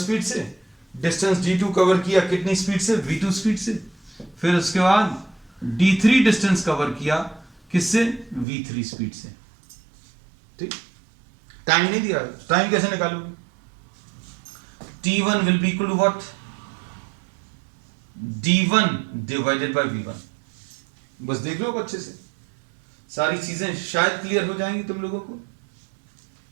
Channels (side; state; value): left; drops out; at 8.5 s